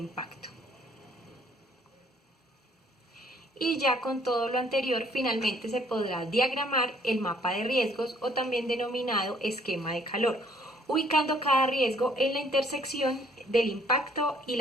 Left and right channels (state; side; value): normal; both; correlation 0.62